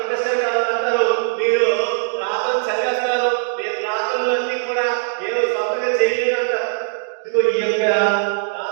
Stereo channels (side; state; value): left; silent; digital silence